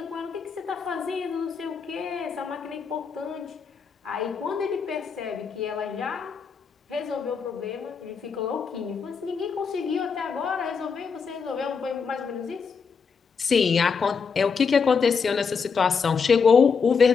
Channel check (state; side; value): quieter; right; 5.7 dB